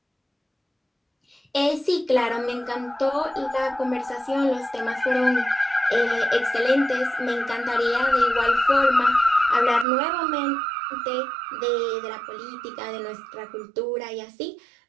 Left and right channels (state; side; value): drops out; left; at 9.9 s